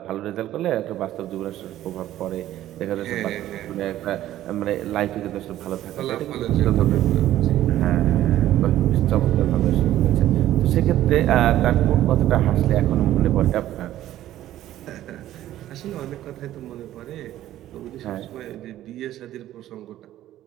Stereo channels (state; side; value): quieter; left; 13.4 dB